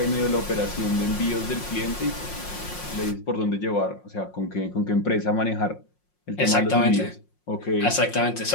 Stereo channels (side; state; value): right; late; 5.6 ms